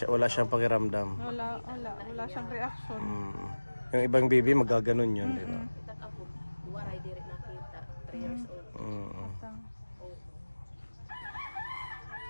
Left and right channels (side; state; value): both; inverted; correlation -1.00